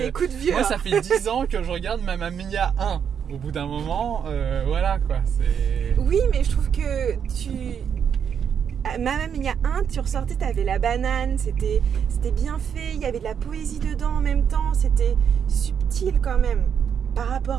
coups de vieux. Moi ça fait 10 ans que je regarde Mamma Mia 1. Au bout d'un moment, voilà quoi, c'est... Oui mais je trouve que Mamma Mia 1, tu ressortais, t'avais la banane, c'était bien fait, il y avait de la poésie dedans en même temps, c'était subtil quand même par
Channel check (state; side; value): quieter; left; 7.8 dB